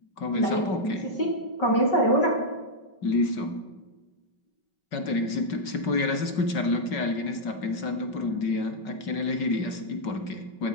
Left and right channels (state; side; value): late; right; 5.3 ms